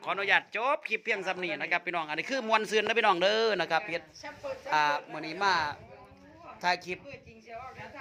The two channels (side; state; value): both; identical; correlation 1.00